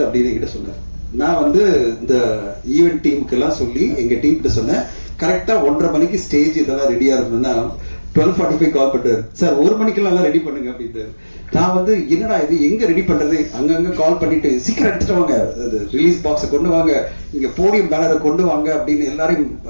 அப்படின்னு என்கிட்ட சொன்னார். நான் வந்து இந்த ஈவென்ட் டீமுக்கு எல்லாம் சொல்லி எங்க டீம் கிட்ட சொன்னேன், கரெக்டா 1:30 மணிக்கு ஸ்டேஜ் இதெல்லாம் ரெடியா இருக்கணும்னா 12:45 கால் பண்றாரு சார், 1 மணிக்கெல்லாம் ரெடி பண்ணுங்க அப்படின்ட்டு. நான் வந்து என்னடா இது, எங்க ரெடி பண்றது, அங்கங்க கால் பண்ணிட்டு சீக்கிரம் எடுத்துட்டு வாங்க, ரிலீஸ் பாக்ஸை கொண்டு வாங்க, இங்க போடியம் பேனரை கொண்டு வாங்க அப்படின்னு எல்லாரையும்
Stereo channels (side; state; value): both; inverted; correlation -1.00